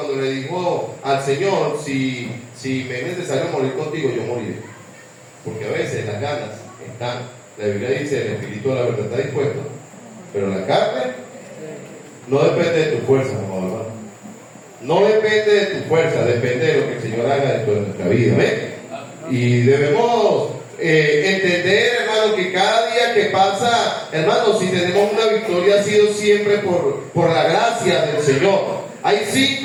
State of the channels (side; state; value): both; identical; correlation 1.00